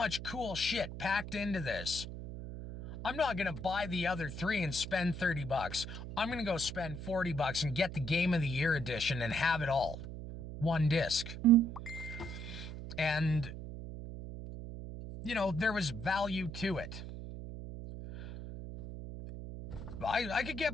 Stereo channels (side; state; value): right; noise; hum, 9 dB below the sound